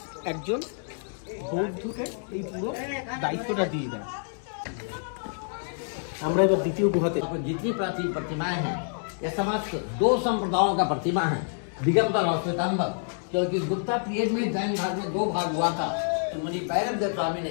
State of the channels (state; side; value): silent; right; digital silence